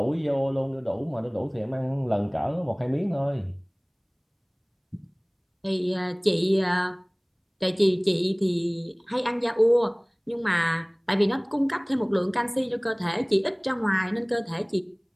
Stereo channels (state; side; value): identical; both; correlation 1.00